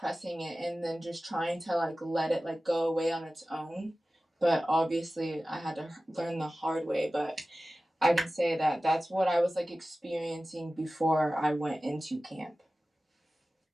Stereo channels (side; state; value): both; normal; correlation 0.96